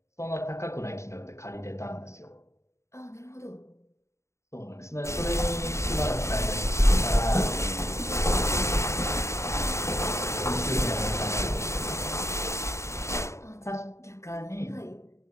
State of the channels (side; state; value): right; late; 0.14 ms